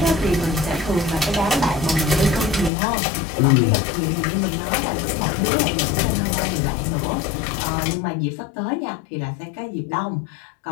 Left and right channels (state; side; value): drops out; right; at 2.7 s